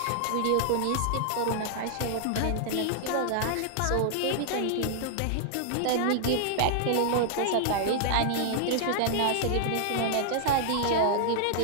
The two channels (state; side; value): different; both; correlation -0.01